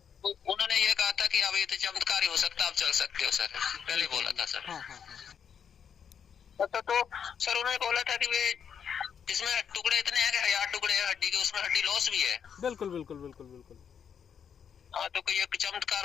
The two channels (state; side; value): quieter; right; 7.6 dB